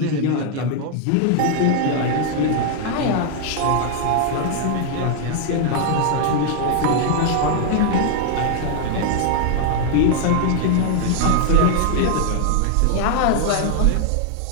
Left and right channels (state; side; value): different; both; correlation 0.00